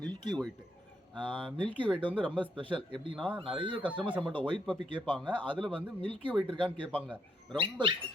மில்கி ஒயிட். மில்கி ஒயிட் வந்து ரொம்ப ஸ்பெஷல். எப்படின்னா நிறைய கஸ்டமர்ஸ் நம்மகிட்ட ஒயிட் பப்பி கேட்பாங்க. அதில் வந்து மில்கி ஒயிட் இருக்கான்னு கேட்பாங்க. ரொம்ப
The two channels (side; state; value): both; normal; correlation 0.75